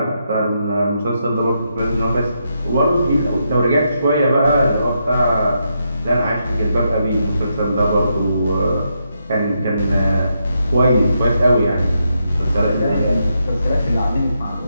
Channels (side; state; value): both; inverted; correlation -0.81